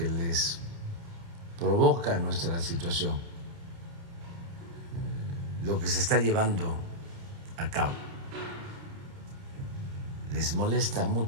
les provoca nuestra situación, lo que se está llevando a cabo. Les molesta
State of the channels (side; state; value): left; late; 29 ms